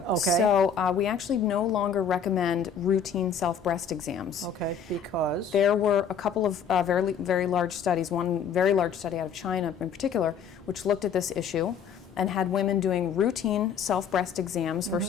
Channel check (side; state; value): right; quieter; 6.7 dB